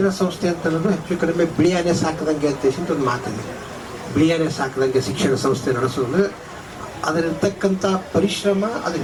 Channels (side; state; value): both; identical; correlation 1.00